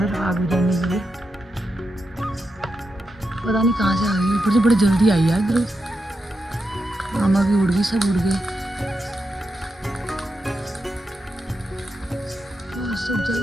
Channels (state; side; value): normal; both; correlation 0.86